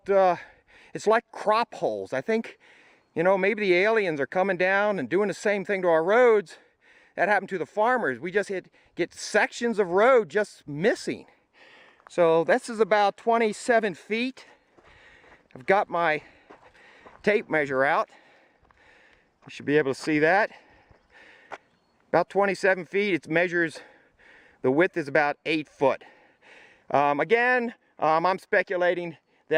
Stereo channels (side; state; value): both; identical; correlation 1.00